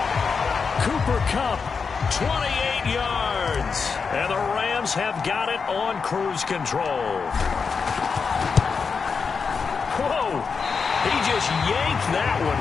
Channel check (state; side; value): quieter; right; 5.4 dB